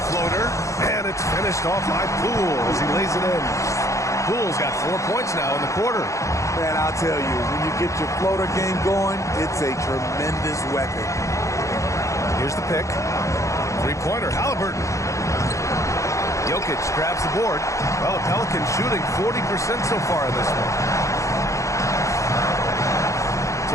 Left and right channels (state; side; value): late; right; 0.15 ms